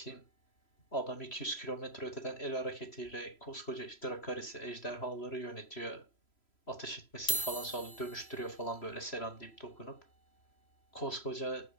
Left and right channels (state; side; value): late; right; 3.0 ms